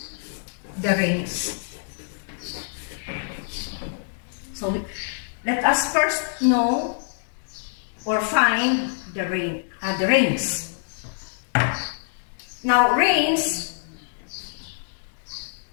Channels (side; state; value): right; silent; digital silence